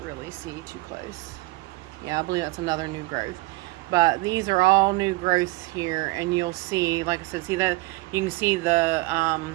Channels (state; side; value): quieter; left; 22.0 dB